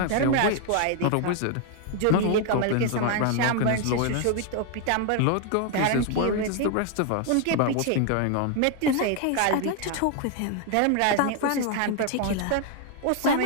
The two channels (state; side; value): different; both; correlation 0.00